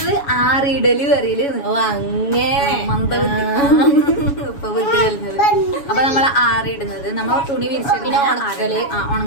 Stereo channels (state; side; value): late; right; 7.1 ms